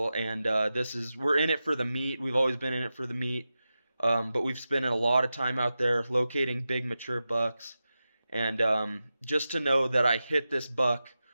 and we're in it for the meat. We've always been in it for the meat, but we've spent a lot of time out there locating big mature bucks, and just to know that I hit this buck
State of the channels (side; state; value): both; inverted; correlation -0.92